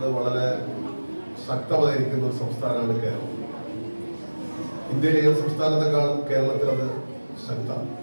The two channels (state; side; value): inverted; both; correlation -1.00